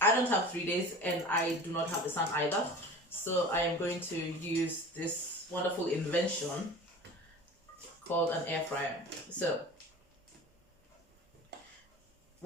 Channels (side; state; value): both; normal; correlation 0.38